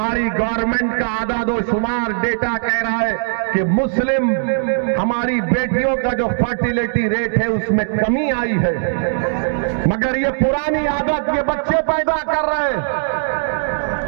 गवर्नमेंट का आदादोशुमार डेटा कह रहा है कि मुस्लिम हमारी बेटियों का जो फर्टिलिटी रेट है उसमें कमी आई है, मगर ये पुरानी आदत, ये बच्चे पैदा कर रहे हैं,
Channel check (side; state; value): left; silent; digital silence